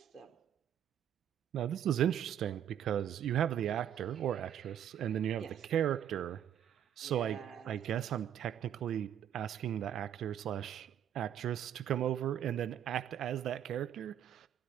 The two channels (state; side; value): quieter; left; 9.9 dB